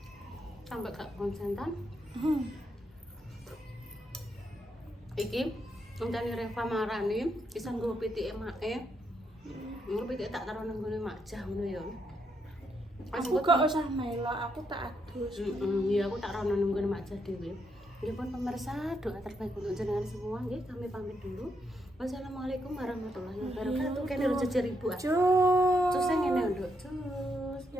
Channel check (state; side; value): normal; both; correlation 0.79